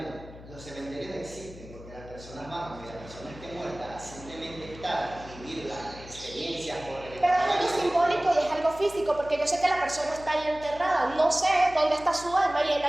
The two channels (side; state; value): left; noise; hum, 17 dB below the sound